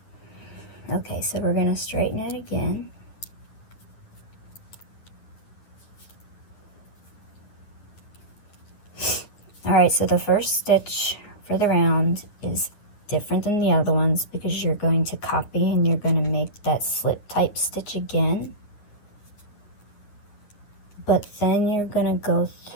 Okay, so we're going to straighten it again. Alright, so the first stitch for the round is different than the other ones because you're going to copy and you're going to make that slip type stitch again. But then you're going to go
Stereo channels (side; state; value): right; late; 9.6 ms